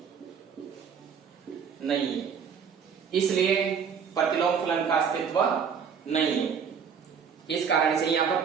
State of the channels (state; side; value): quieter; left; 6.8 dB